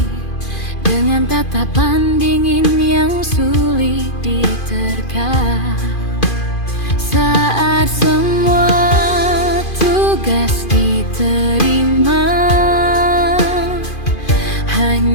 dengan tatapan dingin yang sulit diterka. Saat semua tugas diterima,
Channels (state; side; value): late; right; 2.5 ms